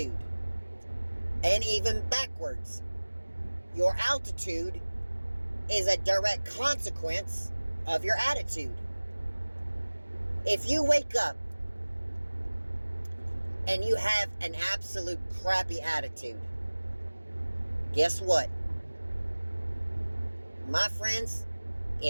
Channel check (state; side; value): inverted; both; correlation -1.00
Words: And even backwards, your altitude is a direct consequence of your attitude. If you wake up and you have an absolute crappy attitude, guess what? My friends,